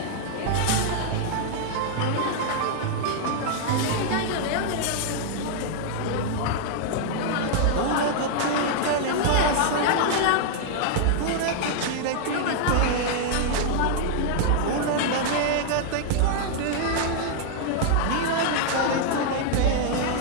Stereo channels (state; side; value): different; both; correlation -0.01